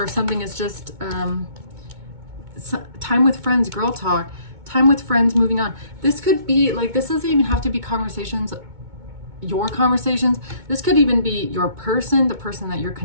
if something is just time with friends, girl talk, time with friends, moving on. This could be like, this doesn't even have to be conversations, your conversations. This could even be your person, the person that you're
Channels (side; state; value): left; late; 2.2 ms